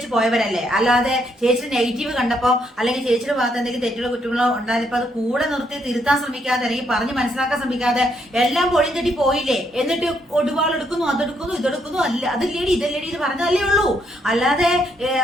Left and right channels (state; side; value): normal; both; correlation 0.74